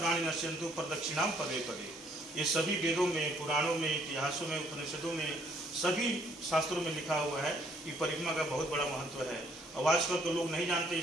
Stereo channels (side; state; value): both; normal; correlation 0.65